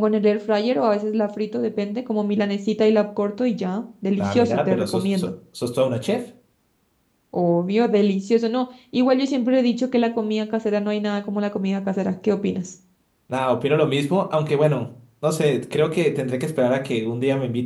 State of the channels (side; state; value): both; identical; correlation 1.00